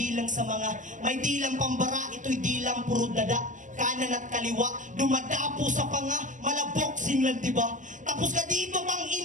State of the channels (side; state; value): left; late; 0.37 ms